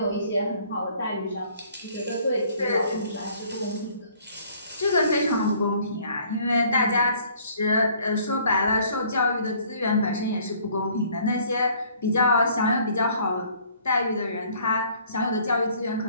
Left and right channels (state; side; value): inverted; both; correlation -0.58